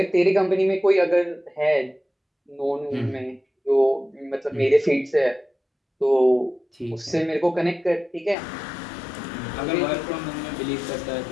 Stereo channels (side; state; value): right; drops out; at 8.3 s